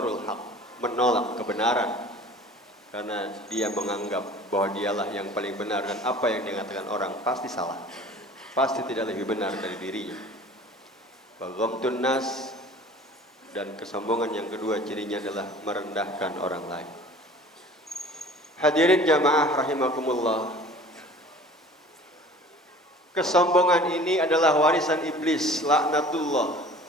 haqq, menolak kebenaran karena dia menganggap bahwa dialah yang paling benar dan apa yang dikatakan orang pasti salah, pasti tidak lebih benar dari dirinya. Baghamtun nas, dan kesombongan yang kedua cirinya adalah merendahkan orang lain. Hadirin jamaah rahimakumullah. Kesombongan ini adalah warisan iblis, laknatullah,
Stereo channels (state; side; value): normal; both; correlation 0.45